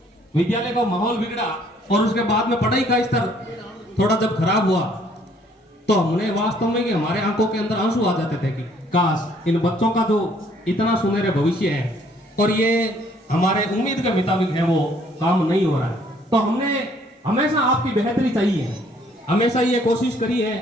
विद्यालय का माहौल बिगड़ा और उसके बाद में पढ़ाई का स्तर थोड़ा जब खराब हुआ, तो हमने वास्तव में कि हमारे आंखों के अंदर आंसू आ जाते थे कि काश इन बच्चों का जो इतना सुनहरे भविष्य है और ये हमारे उम्मीद के मुताबिक है वो काम नहीं हो रहा है। तो हमने हमेशा आपकी बेहतरी चाहिए, हमेशा ये कोशिश करी है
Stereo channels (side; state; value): both; normal; correlation 0.62